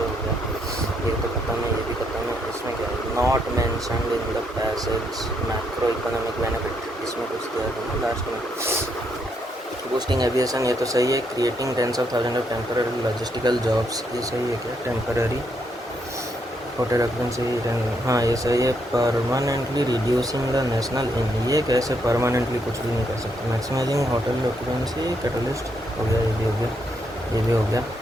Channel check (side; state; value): both; normal; correlation 0.76